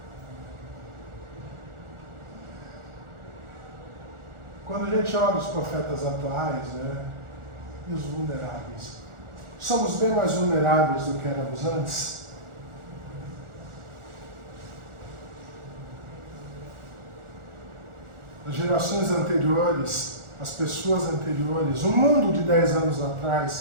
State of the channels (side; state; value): left; late; 1.4 ms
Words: Quando a gente olha os profetas atuais, né, e os vulneráveis, somos bem mais vulneráveis do que éramos antes? As gerações anteriores, as pessoas anteriores, o mundo de 10 anos